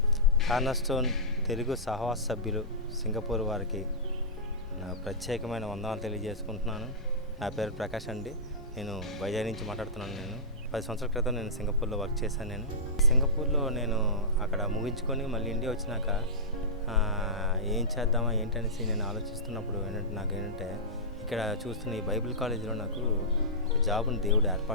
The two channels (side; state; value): both; normal; correlation -0.17